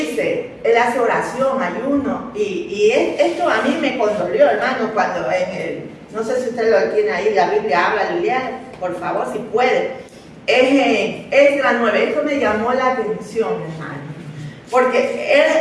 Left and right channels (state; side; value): identical; both; correlation 1.00